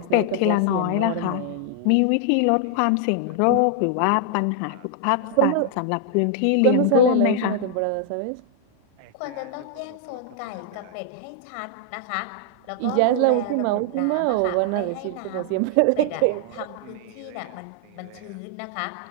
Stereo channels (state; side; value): different; both; correlation -0.01